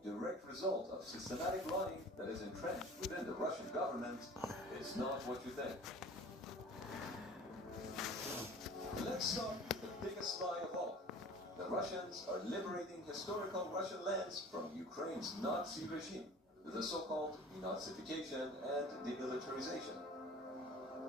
direct result of systematic lying that is entrenched within the Russian government is not what you think. Let's start with the biggest lie of all. The Russians are liberating historical Russian lands from Ukraine's Nazi regime, the so-called denazification and demilitarization.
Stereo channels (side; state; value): both; normal; correlation 0.43